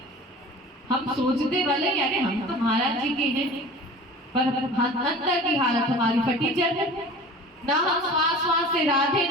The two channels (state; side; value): normal; both; correlation 0.40